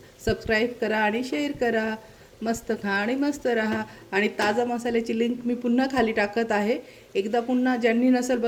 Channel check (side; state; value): both; identical; correlation 1.00